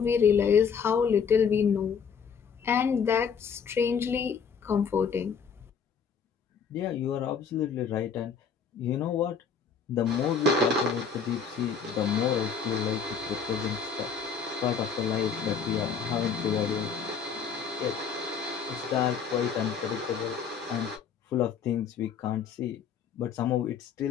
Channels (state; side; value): quieter; right; 6.3 dB